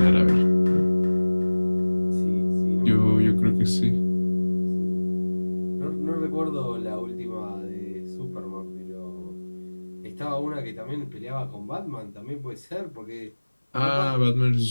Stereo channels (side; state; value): both; inverted; correlation -1.00